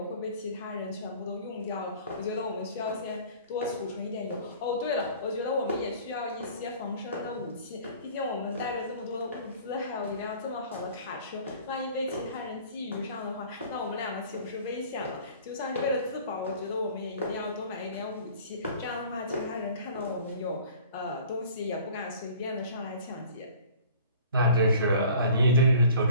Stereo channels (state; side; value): inverted; both; correlation -0.48